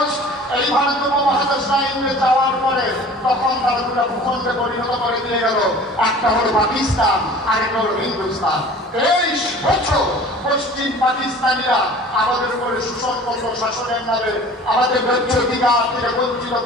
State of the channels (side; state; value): both; normal; correlation 0.45